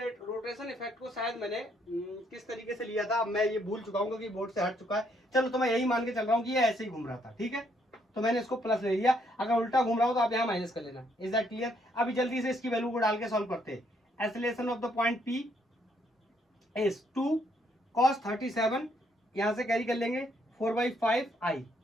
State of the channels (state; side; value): normal; both; correlation 0.71